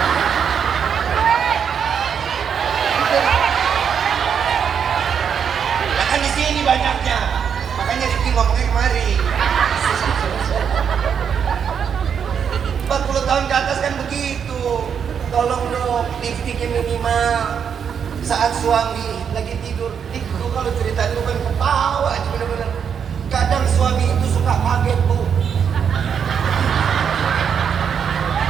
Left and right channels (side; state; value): left; quieter; 7.4 dB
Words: Nah kan di sini banyaknya. Makanya Rifki ngomongnya kemari. 40 tahun ke atas kan begitu. Tolong dong, lipstiknya minimal. Saat suami lagi tidur, itu kalau cerita itu kan ketawa aja bener-bener. Kadang suami itu suka kaget bu.